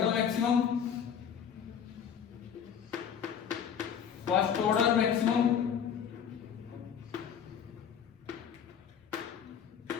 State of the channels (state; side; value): quieter; right; 8.0 dB